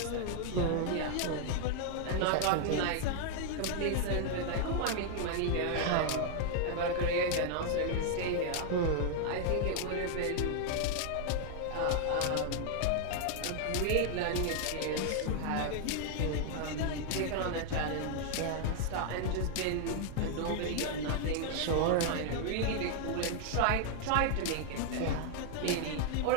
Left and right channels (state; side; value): different; both; correlation 0.00